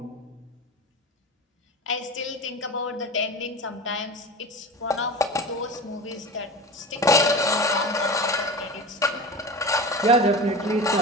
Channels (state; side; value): normal; both; correlation 0.31